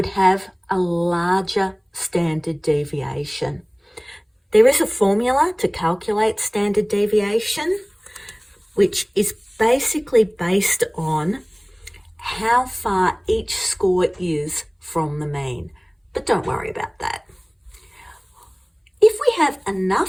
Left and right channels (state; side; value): identical; both; correlation 1.00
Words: have a larger standard deviation. There is a formula to calculate standard deviation, which is basically based on how far each score is from the mean. But don't worry about that. If we have